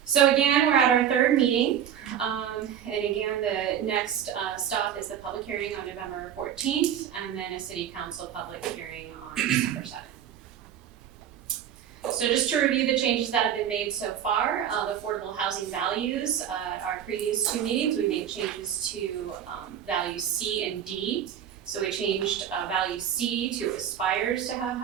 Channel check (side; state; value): left; quieter; 9.6 dB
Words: So again, we're at our third meeting, and again, the next stop is the public hearing on November 14th, and then a City Council public hearing on December 7th. So just to review the changes that have been made so far, the affordable housing values, our previous 2 meetings, we made changes to values C and D. So we changed value C to aspires to have